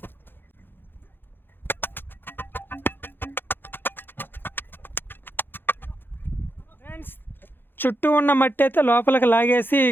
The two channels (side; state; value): right; late; 0.099 ms